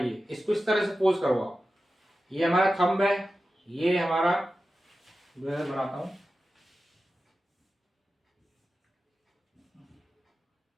इसको इस तरह से पोज करवाओ, ये हमारा थंब है, ये हमारा बनाता हूं,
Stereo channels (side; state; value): both; normal; correlation 0.93